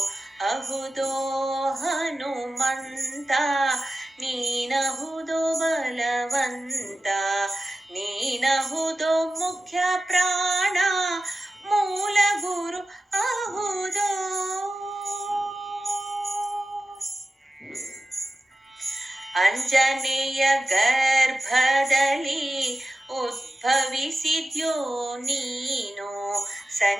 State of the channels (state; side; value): normal; both; correlation 0.94